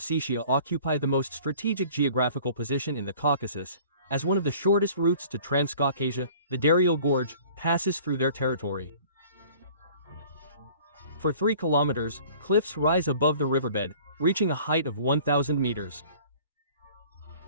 occupy the most strategic geographical position in the Caucasus, as one of the shortest routes to Transcaucasia, the Daryal Gorge, passes through their territory. For 3 kilometers, cliffs rise above the riverbed, reaching a height of 1,000 meters.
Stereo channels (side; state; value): both; inverted; correlation -0.49